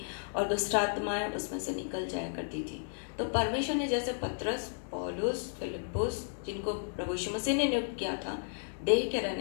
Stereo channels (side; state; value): right; silent; digital silence